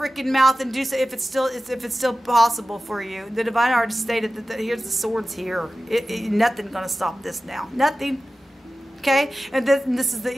mouth and do so if it's still possible for you. The divine already stated that here's the swords here. Nothing gonna stop this now. Nothing. Okay, and this is the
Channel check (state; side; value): normal; both; correlation 0.95